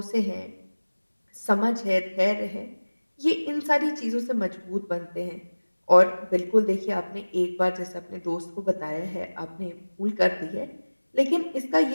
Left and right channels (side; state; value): both; inverted; correlation -1.00